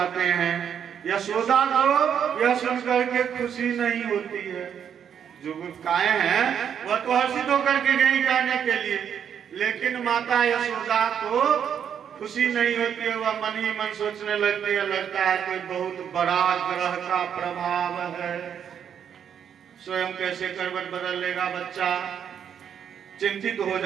हैं। यशोदा को यह सुनकर के खुशी नहीं होती है। जो गायें हैं वह तो हर्षित होकर के गई गाने के लिए, लेकिन माता यशोदा को खुशी नहीं होती है। वह मन ही मन सोचने लगती है, लगता है कोई बहुत बड़ा ग्रह का प्रभाव है। स्वयं कैसे करवट बदल लेगा बच्चा, चिंतित हो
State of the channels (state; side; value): quieter; left; 8.4 dB